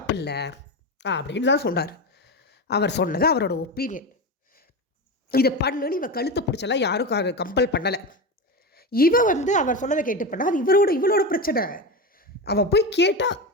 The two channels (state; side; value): normal; both; correlation 0.19